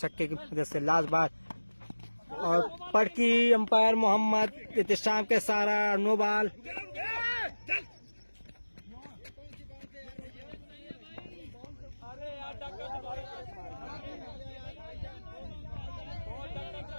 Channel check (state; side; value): inverted; both; correlation -1.00